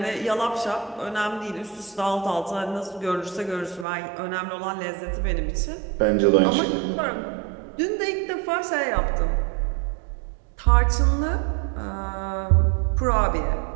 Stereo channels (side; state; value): left; drops out; at 3.9 s